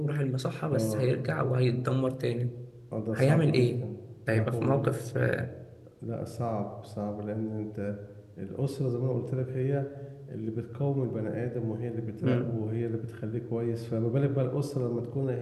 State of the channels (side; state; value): both; identical; correlation 1.00